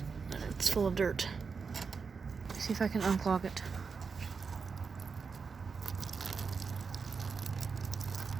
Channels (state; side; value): quieter; left; 5.3 dB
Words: It's full of dirt. See if I can unclog it.